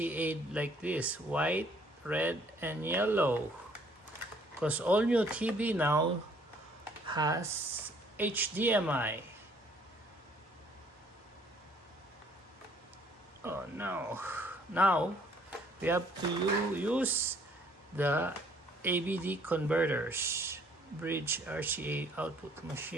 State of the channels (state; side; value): normal; both; correlation 0.61